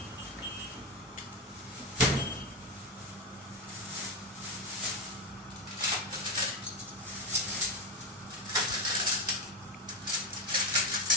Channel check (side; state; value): both; normal; correlation 0.13